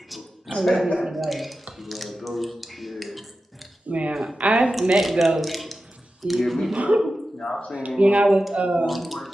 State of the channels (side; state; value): both; normal; correlation 0.93